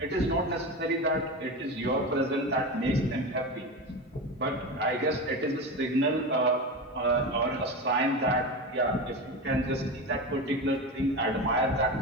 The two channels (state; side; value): normal; both; correlation 0.23